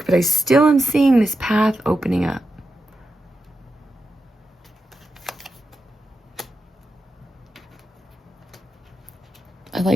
but I still am seeing this path opening up. I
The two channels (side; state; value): both; normal; correlation 0.88